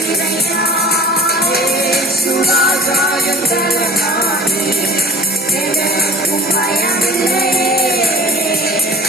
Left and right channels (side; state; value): both; normal; correlation 0.45